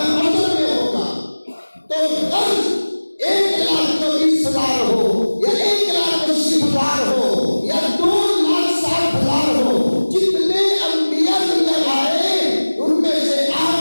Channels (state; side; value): inverted; both; correlation -1.00